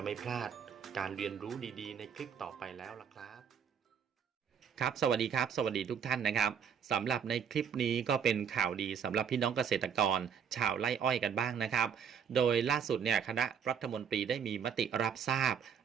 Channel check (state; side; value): quieter; left; 7.5 dB